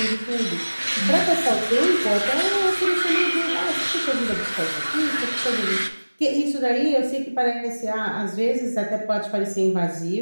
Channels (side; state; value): both; inverted; correlation -1.00